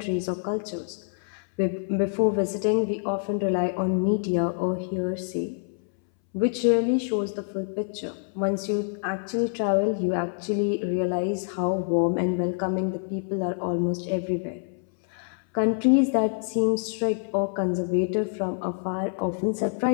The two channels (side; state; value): right; silent; 61 dB below the other